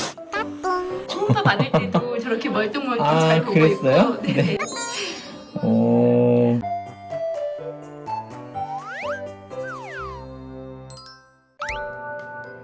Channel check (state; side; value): identical; both; correlation 1.00